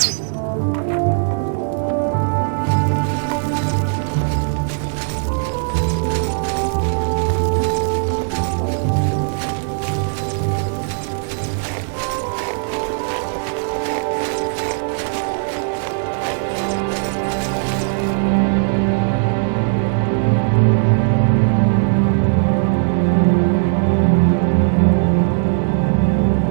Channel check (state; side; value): silent; left; 56 dB below the other